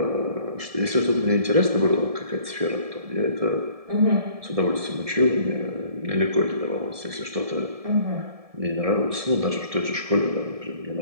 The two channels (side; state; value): left; late; 1.7 ms